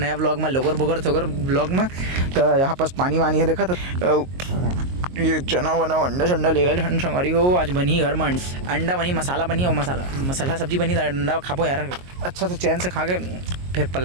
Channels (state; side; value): late; left; 22 ms